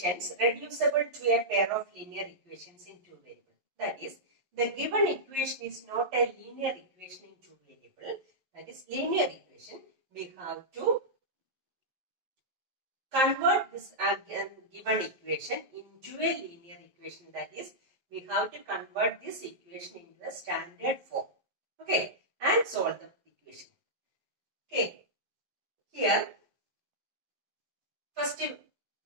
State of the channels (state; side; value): late; left; 11 ms